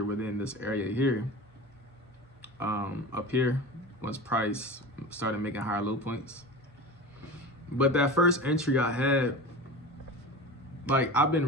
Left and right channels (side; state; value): both; normal; correlation 0.31